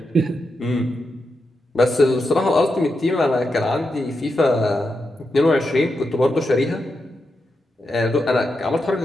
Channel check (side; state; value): both; normal; correlation 0.86